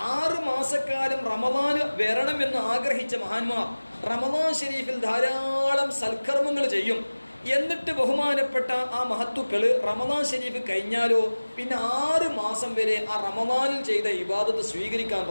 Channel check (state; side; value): inverted; both; correlation -1.00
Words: 6 മാസക്കാലം റമദാന് വരണമെന്ന് ആഗ്രഹിച്ച മഹാന്മാർ റമദാൻ ഷരീഫിൽ ധാരാളം സൽക്കർമ്മങ്ങൾ ചെയ്യും. എന്നിട്ട് ബഹുമാനപ്പെട്ട ആ മഹത്തുക്കൾ റമദാൻ ശരീഫ് കഴിഞ്ഞാലോ പിന്നെ 6 മാസം വരെ ആ റമദാനിൽ ചെയ്ത ഇബാദത്ത് സ്വീകരിക്കാൻ